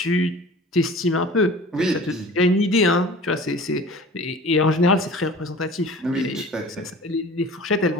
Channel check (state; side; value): normal; both; correlation 0.42